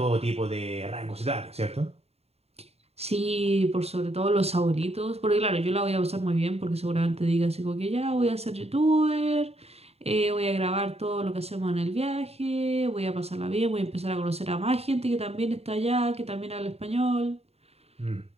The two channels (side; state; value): left; late; 0.30 ms